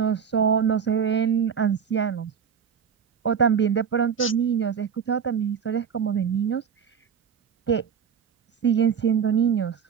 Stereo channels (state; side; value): quieter; left; 7.3 dB